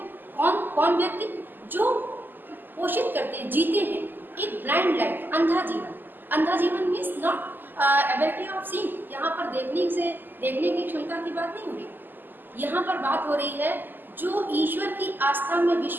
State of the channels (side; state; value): left; late; 0.090 ms